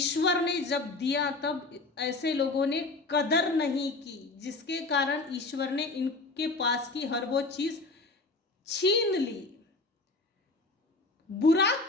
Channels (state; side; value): quieter; right; 3.3 dB